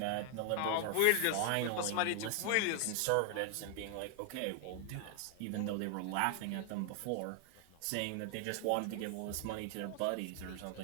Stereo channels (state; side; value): different; both; correlation 0.00